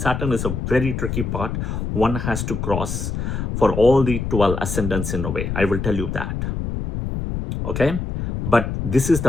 is a very tricky part. One has to cross for all the 12 ascendants in a way. I will tell you that. Okay? But this is the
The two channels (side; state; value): left; noise; rumble, 3 dB below the sound